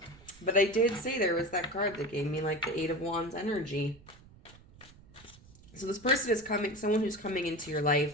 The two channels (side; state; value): right; noise; rumble, 23 dB below the sound